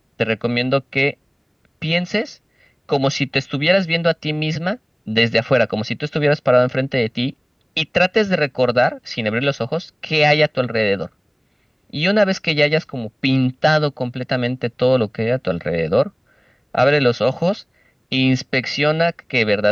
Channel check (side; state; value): both; identical; correlation 1.00